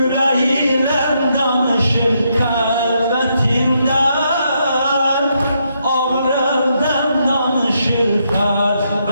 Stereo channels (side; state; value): both; inverted; correlation -0.78